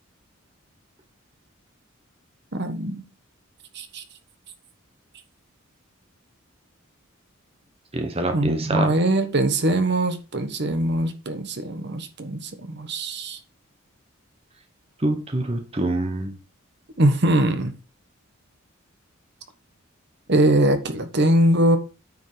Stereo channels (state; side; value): normal; both; correlation 0.52